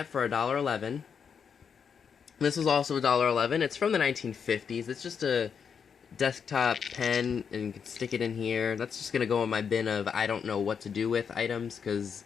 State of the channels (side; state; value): right; quieter; 6.8 dB